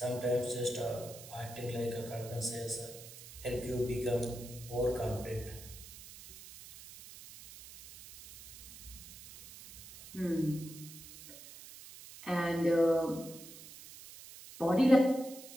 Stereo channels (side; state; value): right; noise; hiss, 16 dB below the sound